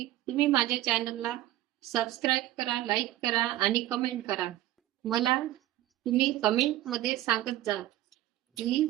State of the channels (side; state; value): left; quieter; 14.4 dB